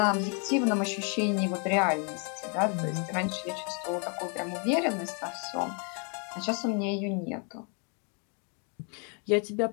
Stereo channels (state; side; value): quieter; right; 37.9 dB